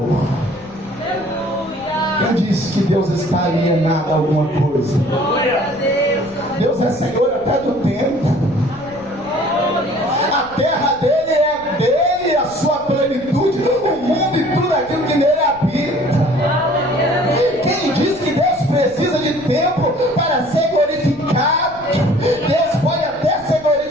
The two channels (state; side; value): noise; left; rumble, 22 dB below the sound